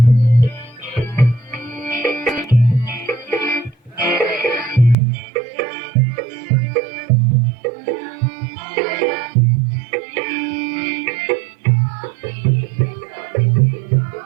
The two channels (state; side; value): drops out; left; at 5.0 s